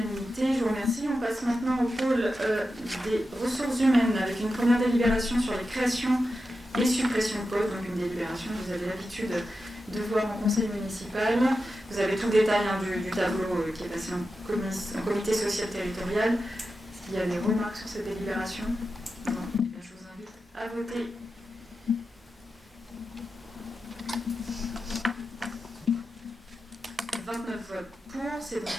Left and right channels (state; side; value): normal; both; correlation 0.91